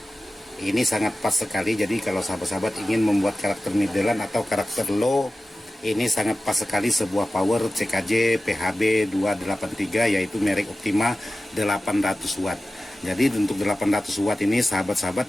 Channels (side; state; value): both; normal; correlation 0.94